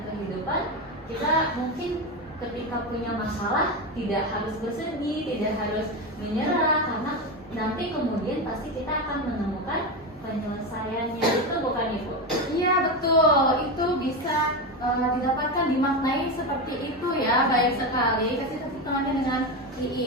kehidupan, kita mungkin ketika punya masalah tidak harus bersedih, tidak harus menyerah, karena nanti kemudian pasti kita akan menemukan penyelesaiannya. Itu bukan Ibu? Iya betul, itu bisa didapatkan, dimaknai seperti itu ya. Baik sekali, kasih tepuk tangannya dengan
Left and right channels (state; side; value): normal; both; correlation 0.16